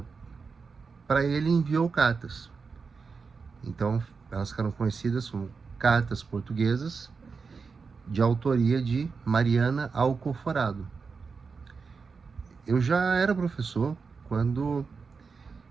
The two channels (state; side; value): quieter; left; 5.0 dB